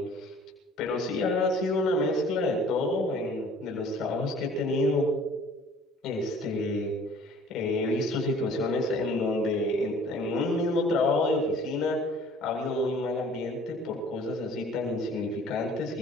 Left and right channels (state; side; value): normal; both; correlation 0.51